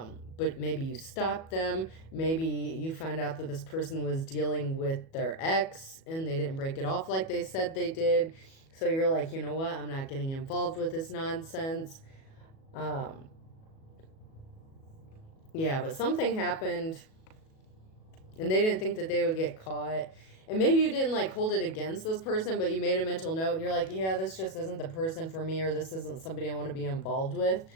maybe you stopped them. Maybe you found out that this person was dealing with their ex and they didn't break it off like they said they did. So you're like, you know what? I'm not getting involved with this nonsense. Yeah, but something happened and they didn't think that they would get caught. And maybe you didn't like hold it against this person, but you made a mental note and you're like, yeah, this just isn't the person for me, or this isn't somebody I want to be involved with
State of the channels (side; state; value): right; late; 37 ms